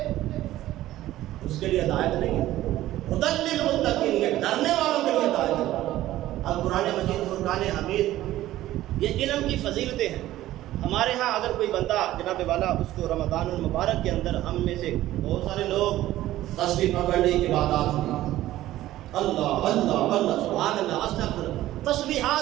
اس کے لیے ہدایت نہیں ہے. ھدی للمتقین، یہ ڈرنے والوں کے لیے ہدایت ہے. اب قرآن مجید فرقان حمید یہ علم کی فضیلتیں ہیں. ہمارے ہاں اگر کوئی بندہ جناب والا اس کو رمضان المبارک کے اندر، ہم میں سے بہت سارے لوگ تسبیح پکڑنے کی عبادات میں اللہ اللہ اللہ سبحان اللہ استغفر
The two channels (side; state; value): left; quieter; 14.8 dB